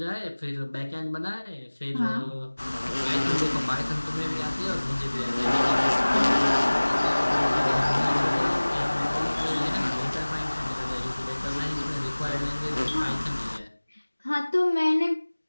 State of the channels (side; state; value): both; inverted; correlation -1.00